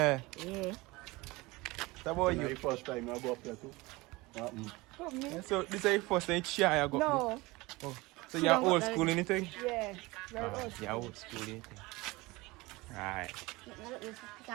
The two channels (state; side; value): quieter; left; 22.3 dB